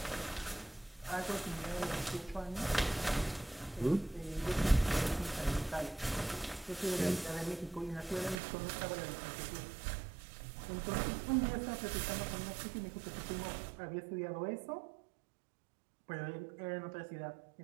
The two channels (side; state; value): left; drops out; at 8.3 s